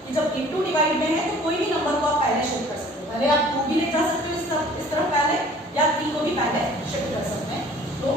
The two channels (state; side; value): normal; both; correlation 0.51